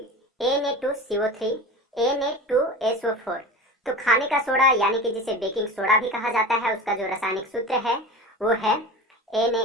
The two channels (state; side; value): normal; both; correlation 0.32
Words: Na2CO3, Na2SO4। तो खाने का सोडा यानी कि जिसे बेकिंग सोडा भी कहा जाता है, उसका जो रासायनिक सूत्र है वो है